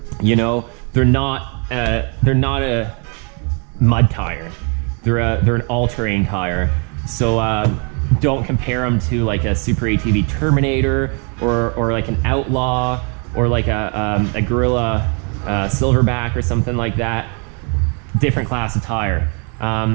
You know, they're not a mud tire. They're an all-terrain tire. So don't compare them to like a Super ATV Terminator or like an Outlaw or like a Gorilla Silverback or something like that. Different class of tire.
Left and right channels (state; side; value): quieter; left; 36.3 dB